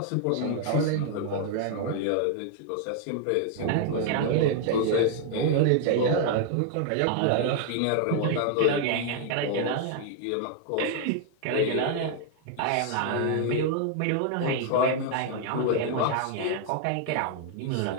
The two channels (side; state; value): both; different; correlation 0.00